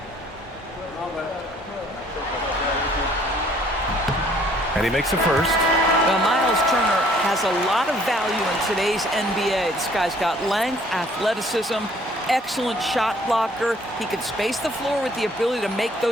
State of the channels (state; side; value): normal; both; correlation 0.59